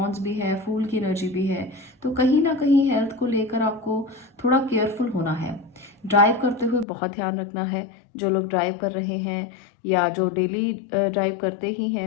भी है, फूल की एनर्जी भी है। तो कहीं ना कहीं हेल्थ को लेकर आपको थोड़ा केयरफुल होना है। ड्राइव करते हुए बहुत ध्यान रखना है। जो लोग ड्राइव कर रहे हैं या जो डेली ड्राइव करते ही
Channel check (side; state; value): right; drops out; at 6.9 s